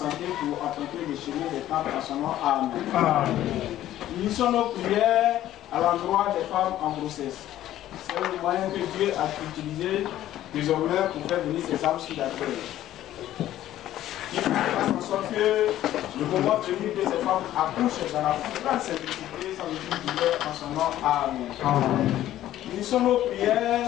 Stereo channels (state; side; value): quieter; right; 13.2 dB